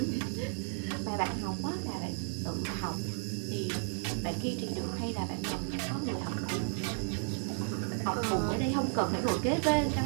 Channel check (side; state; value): left; silent; 56 dB below the other